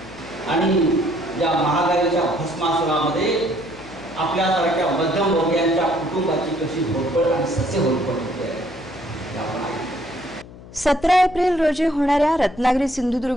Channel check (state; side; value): noise; left; hum, 18 dB below the sound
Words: आणि या महागाईच्या भस्मासुरामध्ये आपल्यासारख्या मध्यमवर्गीयांच्या कुटुंबाची कशी होरपळ आणि सस्य होरपळ होते आपण आहे। 17 एप्रिल रोजी होणाऱ्या रत्नागिरी